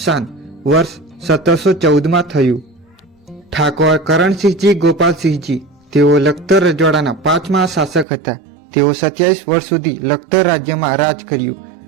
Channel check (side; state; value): left; drops out; at 8.1 s